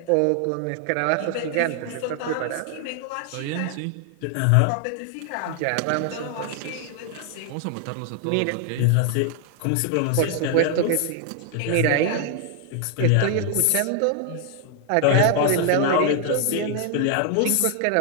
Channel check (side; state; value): both; different; correlation 0.00